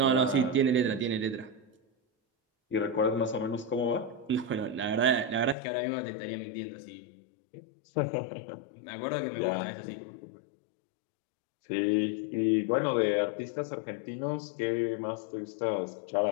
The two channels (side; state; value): right; drops out; at 5.6 s